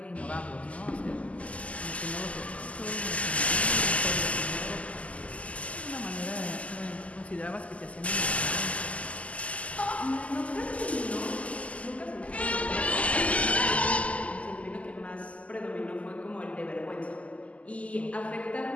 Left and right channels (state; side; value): late; right; 0.067 ms